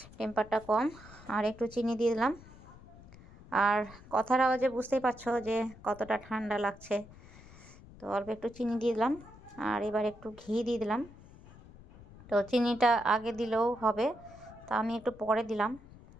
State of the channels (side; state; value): left; noise; rumble, 20 dB below the sound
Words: টেম্পারটা কম। আর একটু চিনি দিয়ে দিলাম। আর কথার আওয়াজে বুঝতেই পারছো যে কতটা ঠান্ডা লাগছে। তো অল্প একটু চিনি দিয়ে দিলাম। আর এবার একটু ঘি দিয়ে দিলাম। তো চিনিটা আগে দিলেও হবে, তো আমি একটু পরে দিলাম।